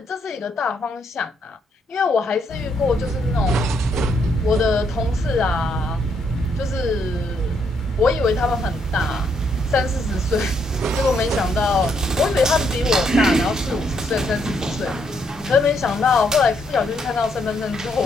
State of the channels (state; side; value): normal; both; correlation 0.74